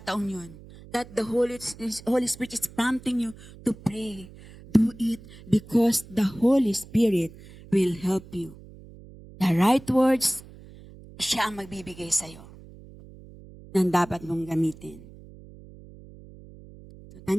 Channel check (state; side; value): noise; right; hum, 19 dB below the sound